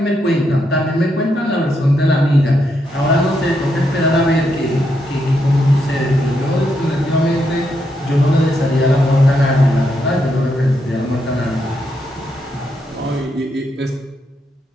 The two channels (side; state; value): both; normal; correlation 0.80